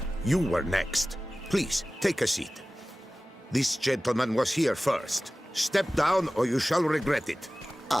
you were next. Please, take a seat. This gentleman was here first. Step down or you shall regret it.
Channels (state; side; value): normal; both; correlation 0.97